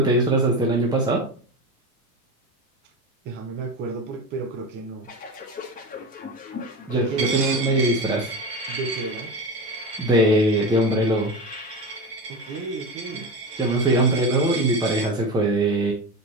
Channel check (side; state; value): both; normal; correlation 0.23